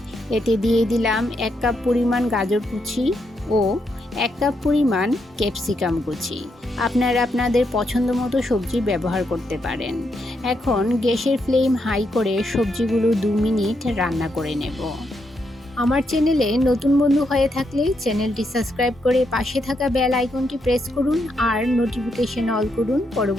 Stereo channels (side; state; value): both; normal; correlation 0.80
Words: এতে দিয়ে দিলাম 1 কাপ পরিমাণ গাজর কুচি ও 1 কাপ পরিমাণ ক্যাপসিকাম কুচি। আপনারা আপনাদের পছন্দ মতো সবজি ব্যবহার করতে পারেন। এখন গ্যাসের ফ্লেম হাই করে সবজিগুলো 2 মিনিট রান্না করে নেব। আমার চ্যানেলে নতুন বন্ধু হয়ে থাকলে চ্যানেলটি সাবস্ক্রাইব করে পাশে থাকা বেল আইকনটি প্রেস করুন আর নোটিফিকেশন অল করুন